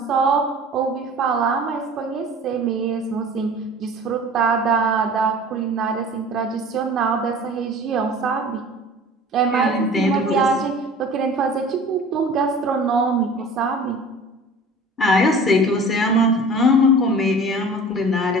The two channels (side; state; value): both; normal; correlation 0.43